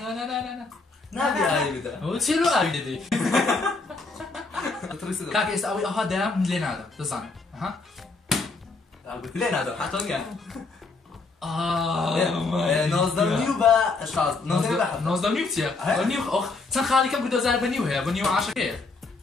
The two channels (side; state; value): right; quieter; 3.8 dB